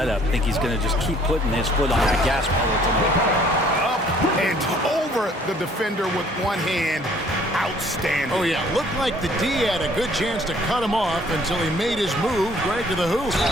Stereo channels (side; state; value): both; normal; correlation 0.58